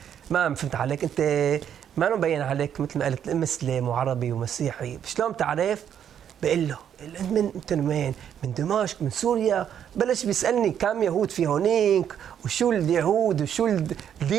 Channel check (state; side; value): quieter; left; 9.2 dB